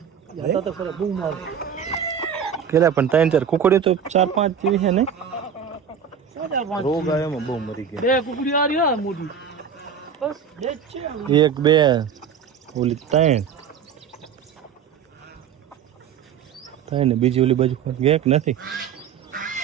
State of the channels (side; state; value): left; quieter; 7.6 dB